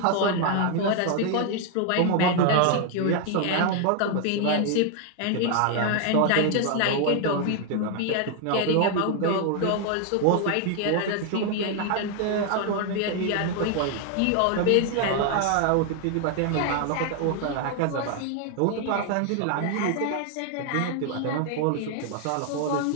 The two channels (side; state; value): both; different; correlation 0.00